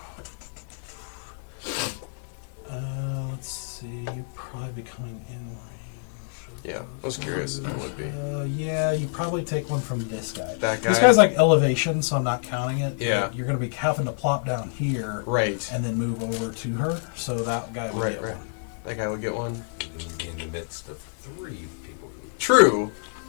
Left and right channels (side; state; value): right; silent; digital silence